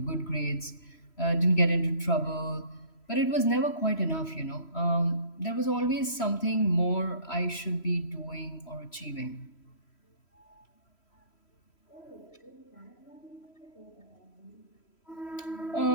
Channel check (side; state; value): right; late; 3.1 ms